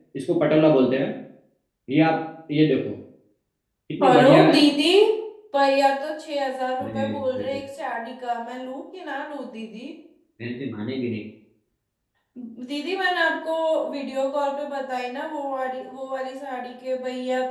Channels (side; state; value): both; identical; correlation 1.00